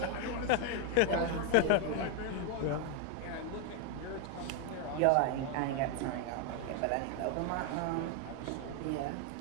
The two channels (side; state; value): both; different; correlation 0.01